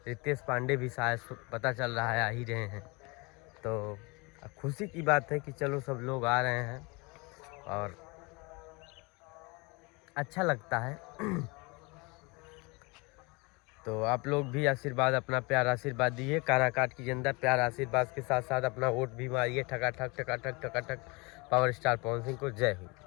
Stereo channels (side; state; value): right; quieter; 27.5 dB